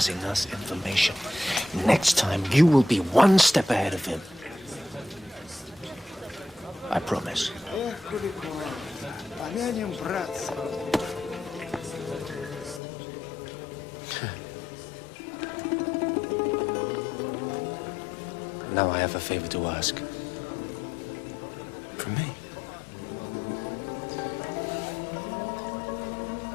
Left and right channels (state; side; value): drops out; right; at 12.8 s